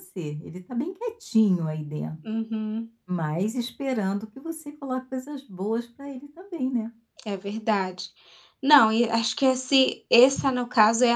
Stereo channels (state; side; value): identical; both; correlation 1.00